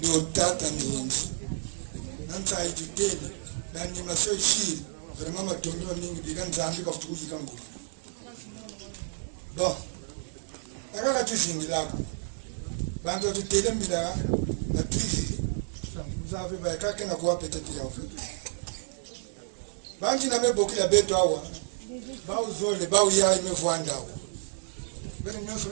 tata mingi nanta itutele nani maso shiri vraiment matondo mingi diga nzambi ka futukuji kangu bon akaka tuzingi lako bango tutele mbila na tuzi vous avez ba kaka na kwa peut-être ya fait bangi na meboki la beto awa ba uzole ba uya imevwanda awa bene nyoso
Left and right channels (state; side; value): silent; left; 58 dB below the other